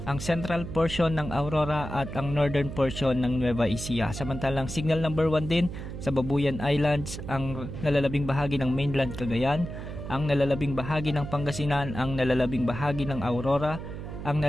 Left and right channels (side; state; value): right; noise; hum, 8 dB below the sound